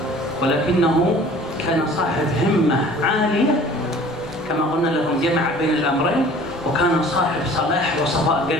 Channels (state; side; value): normal; both; correlation 0.48